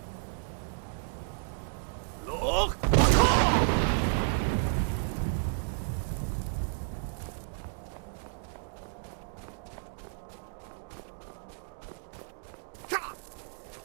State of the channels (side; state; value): left; silent; digital silence